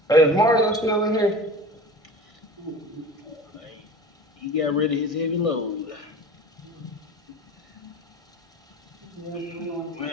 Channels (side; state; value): both; normal; correlation 0.37